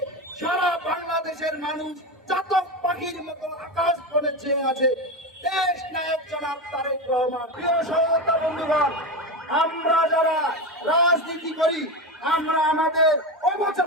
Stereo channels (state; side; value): normal; both; correlation 0.19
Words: সারা বাংলাদেশের মানুষ চাতক পাখির মতো আকাশ বনে চেয়ে আছে দেশ নায়ক জনাব তারেক রহমান। প্রিয় সহযোদ্ধা বন্ধুগণ, আমরা যারা রাজনীতি করি, আমরা আমাদের